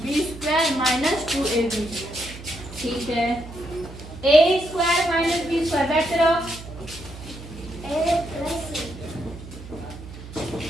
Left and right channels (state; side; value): noise; right; hum, 14 dB below the sound